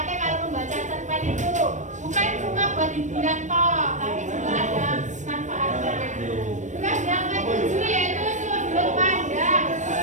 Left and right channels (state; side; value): late; left; 0.35 ms